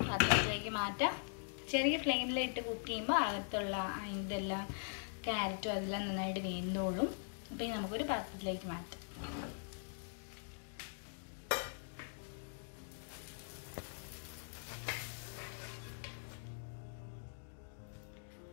പാത്രത്തിലേക്ക് മാറ്റാം. ചെറിയ ഫ്ലെയിമിലിട്ട് കുക്ക് ചെയ്യുമ്പോൾ അകത്തുള്ള ഇതെല്ലാം ക്യാരറ്റും അതെല്ലാം നന്നായിട്ട് വെന്തോളും. അപ്പോൾ ഇത് നമുക്കൊരു പാത്രത്തിലേക്ക് മാറ്റാം.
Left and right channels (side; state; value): right; silent; digital silence